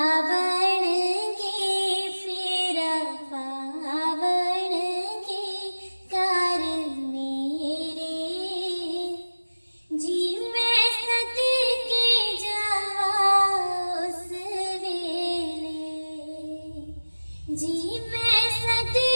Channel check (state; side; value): inverted; both; correlation -1.00